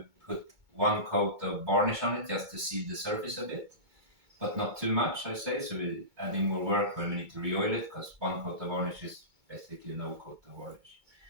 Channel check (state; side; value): late; left; 2.2 ms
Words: put one coat of varnish on it just to seal the surface a bit, but not too much, I say. So we're adding more work when we need to re-oil it, because one coat of varnish is basically no coat of varnish.